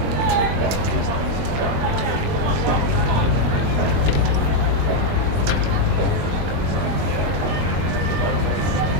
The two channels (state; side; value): late; left; 22 ms